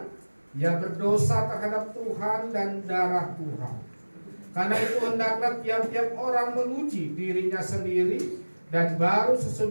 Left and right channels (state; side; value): inverted; both; correlation -1.00